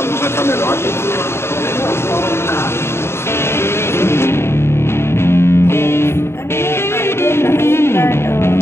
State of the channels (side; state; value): right; late; 0.12 ms